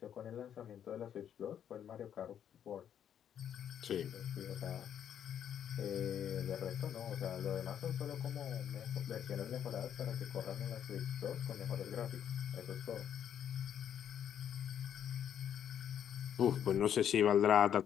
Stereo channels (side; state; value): right; quieter; 9.3 dB